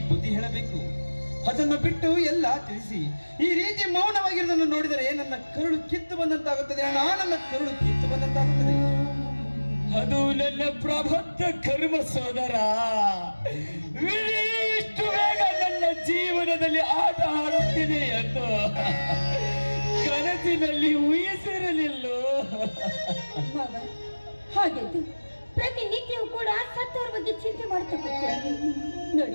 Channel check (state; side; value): inverted; both; correlation -1.00